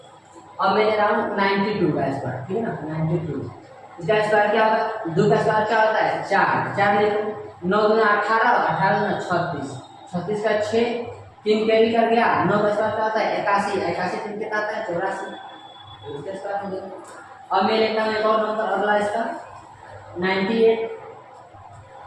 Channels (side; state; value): both; identical; correlation 1.00